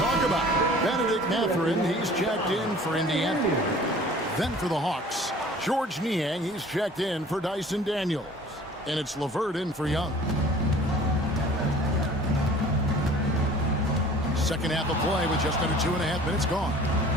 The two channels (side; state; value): both; normal; correlation 0.48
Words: talk about. Benedict Mathurin, he's checked in for Indiana. Then for the Hawks, George Niang, he's checked in for Dyson Daniels. And it's LeVert in for Young. Second half of play with just under 2.5 minutes gone.